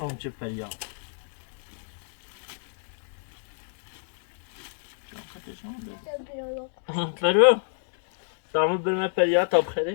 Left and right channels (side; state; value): right; silent; digital silence